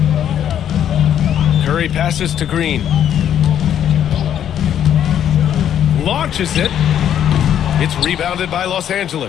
Curry passes to Green. Launches it. It's rebounded by Los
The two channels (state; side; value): quieter; right; 9.9 dB